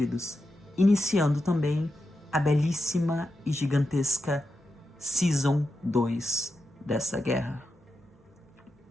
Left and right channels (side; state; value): both; normal; correlation 0.88